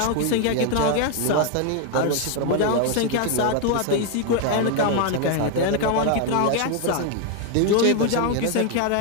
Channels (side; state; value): both; different; correlation 0.01